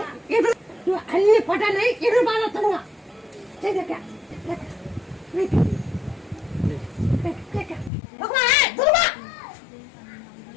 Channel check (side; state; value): right; drops out; at 7.9 s